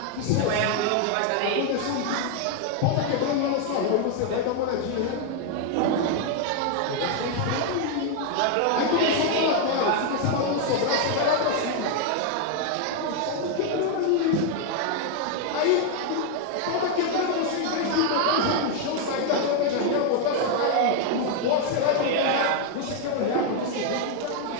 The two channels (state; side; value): different; both; correlation 0.00